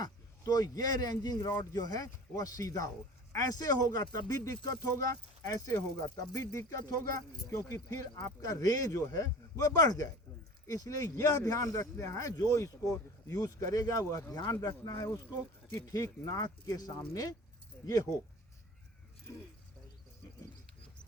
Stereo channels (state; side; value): normal; both; correlation 0.40